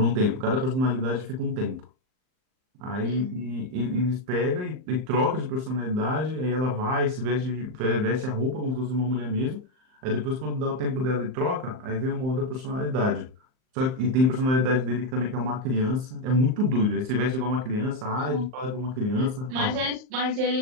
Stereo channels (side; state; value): left; late; 38 ms